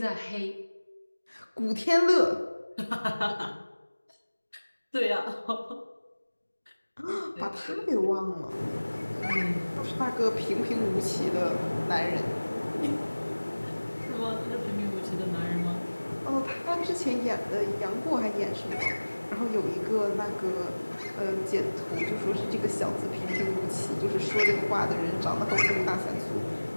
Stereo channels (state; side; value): inverted; both; correlation -1.00